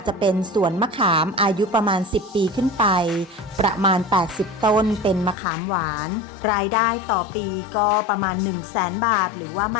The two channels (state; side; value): drops out; right; at 5.4 s